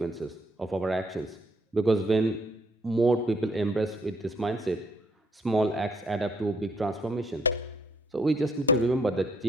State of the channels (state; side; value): normal; both; correlation 0.68